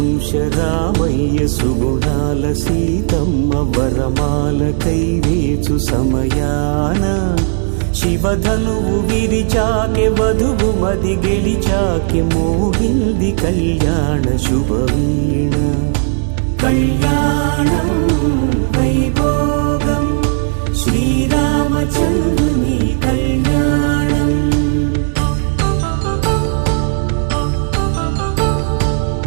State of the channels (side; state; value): left; silent; 61 dB below the other